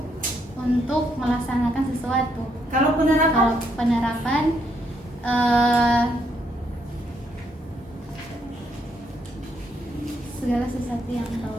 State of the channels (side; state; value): both; normal; correlation 0.74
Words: untuk melaksanakan sesuatu. Kalau penerapan Kalau penerapan segala sesuatu yang